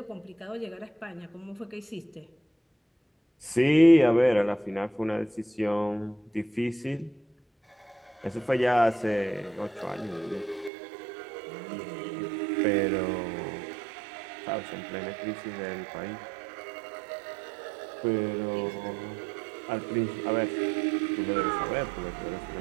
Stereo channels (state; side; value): drops out; left; at 10.7 s